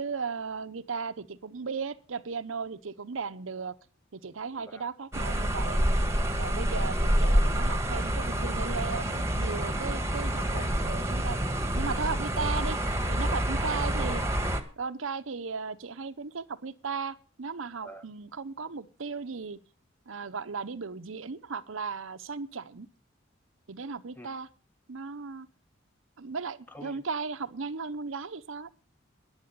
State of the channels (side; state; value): both; normal; correlation 0.52